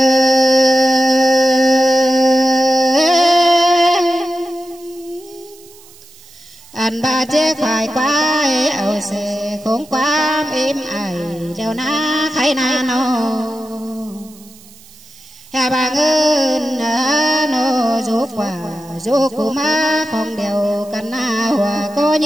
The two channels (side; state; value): right; noise; hiss, 24 dB below the sound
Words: anh ba chế khai quá ảo xe khốn quá êm ai đeo na khai na nô hà bà ngân nô giúp quả giúp cụ má không đều cần na hòa có